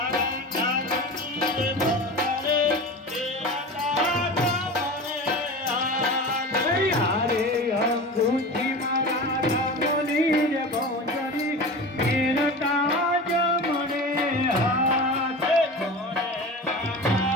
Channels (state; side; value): normal; both; correlation 0.31